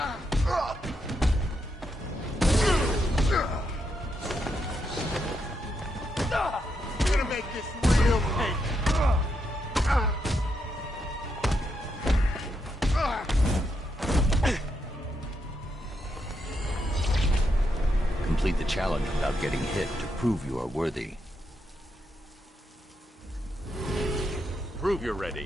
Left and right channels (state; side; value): normal; both; correlation 0.81